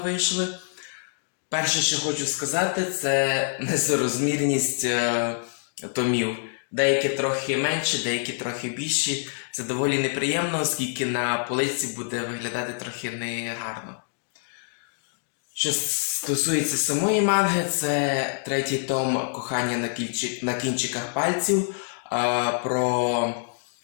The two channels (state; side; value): silent; right; 61 dB below the other